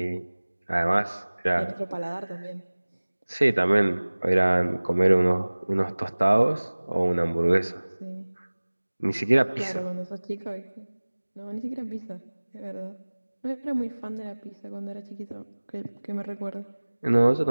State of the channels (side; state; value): both; inverted; correlation -1.00